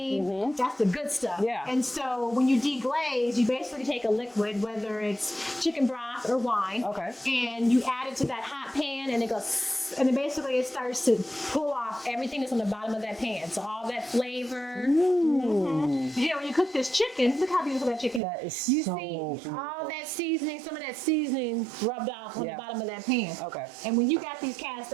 that's the good stuff. Yeah. And so when you deglaze, you basically take a liquid, whether it's chicken broth or wine, Okay. and you add it to that hot pan, and it goes, and then basically it starts to pull off everything that's on the bottom of that pan. So all that flavor. You know, when you cook this chicken, look how beautiful that chicken is. That is You so see beautiful. all that seasoning, some of that seasoning rubbed off on Yeah. the bottom of that pan. Okay. And when you got these cast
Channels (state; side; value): drops out; left; at 18.2 s